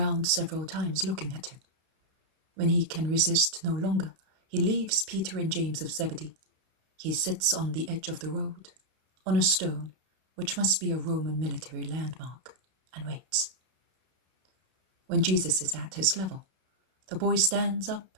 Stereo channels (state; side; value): late; left; 32 ms